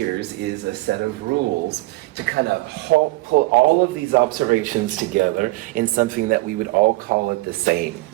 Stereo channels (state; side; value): quieter; left; 20.7 dB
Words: is a set of rules to kind of pull all of these observations together in something that we would all call it the same,